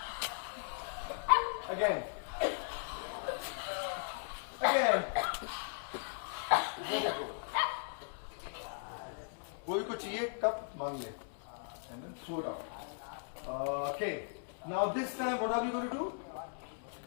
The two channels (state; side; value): silent; right; digital silence